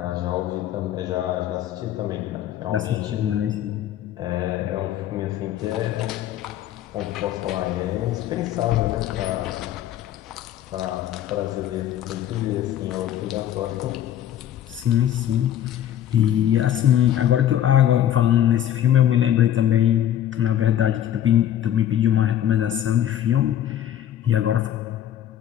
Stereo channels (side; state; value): right; quieter; 11.1 dB